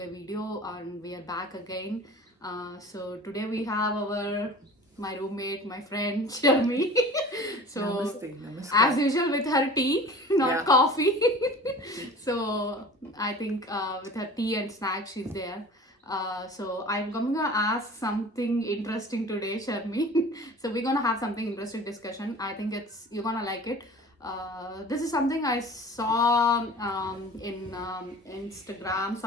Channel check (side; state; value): both; normal; correlation 0.41